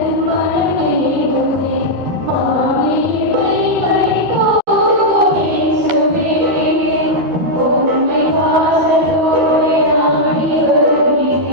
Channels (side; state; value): left; late; 12 ms